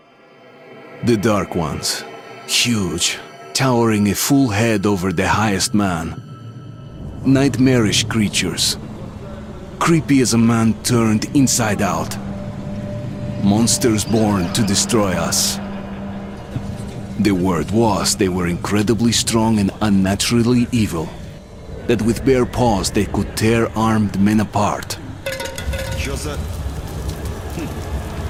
The Dark Ones, huge, towering a full head over the highest man. Nightmarish creatures, creepy as a man turned inside out. Monsters born to destroy us. The word was they were incredibly strong and unnaturally evil. That with bare paws they could tear armed men apart.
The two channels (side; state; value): both; identical; correlation 1.00